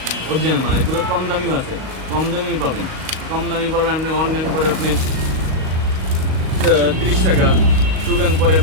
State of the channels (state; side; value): late; left; 38 ms